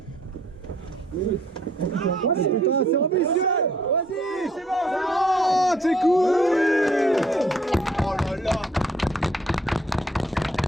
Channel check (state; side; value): normal; both; correlation 0.63